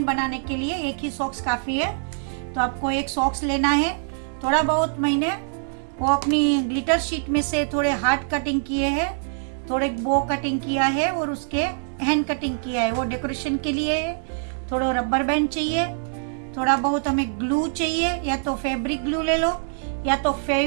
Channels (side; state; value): left; silent; 63 dB below the other